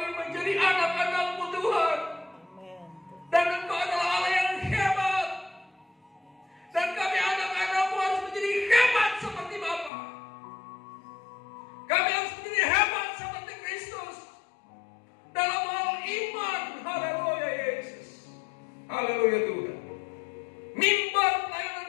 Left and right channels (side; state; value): right; drops out; at 9.9 s